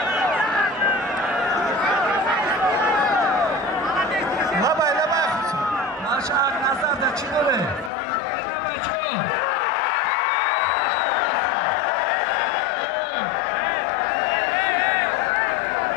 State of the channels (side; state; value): right; drops out; at 7.9 s